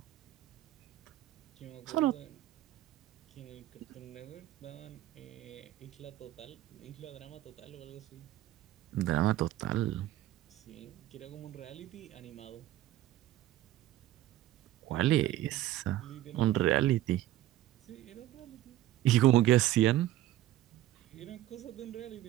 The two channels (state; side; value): quieter; left; 14.5 dB